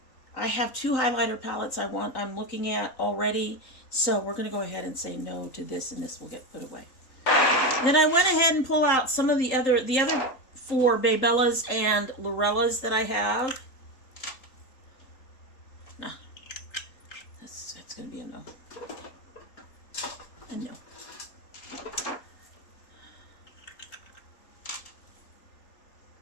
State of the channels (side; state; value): right; late; 3.8 ms